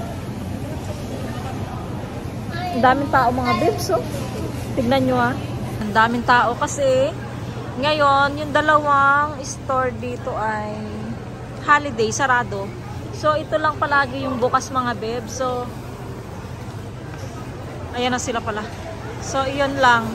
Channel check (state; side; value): identical; both; correlation 1.00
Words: Ang daming tao mga bebs, oh. Tignan nyo ah. Ang daming tao kasi ngayon, yung dalawang store dito ay holiday, sarado. So, ito lang palagi yung bukas mga bebs. So, ayan na sila pala. So, iyon lang.